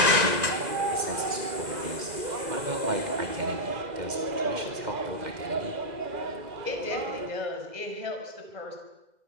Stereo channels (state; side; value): late; left; 2.0 ms